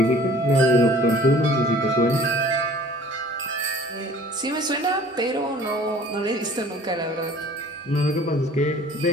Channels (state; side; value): normal; both; correlation 0.50